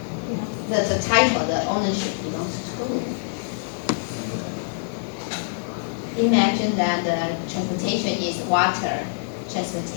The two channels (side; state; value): right; silent; digital silence